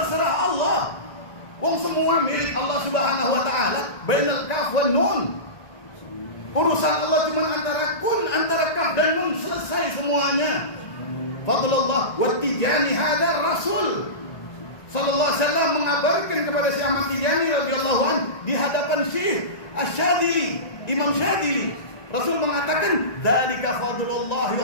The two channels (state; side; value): late; right; 1.9 ms